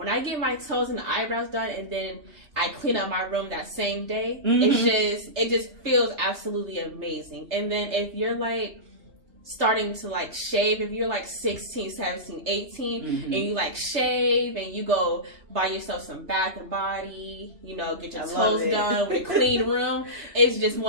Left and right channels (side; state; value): left; late; 3.3 ms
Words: I get my toes and the eyebrows done and then I clean up my room that same day, it just feels absolutely amazing. And then if you're like starting to like shave, if you're like 16, 17, 18 and you like shave and you go buy yourself some Bath and Body, you know, get your toes done with a clean room, it's just